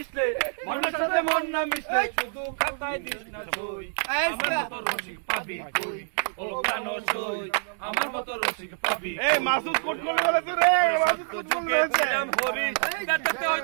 মনের সাথে মন না মিশলে শুধু খাতায় দিস না সই। আমার মতো রসিক পাবি কই, হলো প্রাণ সই। আমার মতো রসিক পাবি। এই মাসুদ কোট করে বলেছে রে, মাসুদ কোট করে বলেছে। হরি কাটাতে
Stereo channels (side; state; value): left; silent; digital silence